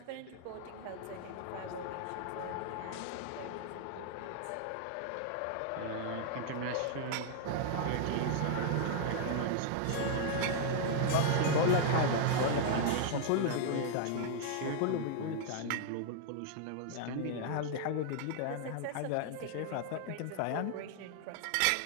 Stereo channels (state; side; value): different; both; correlation -0.01